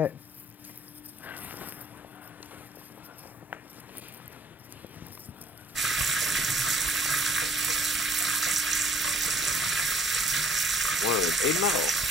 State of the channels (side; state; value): both; normal; correlation 0.57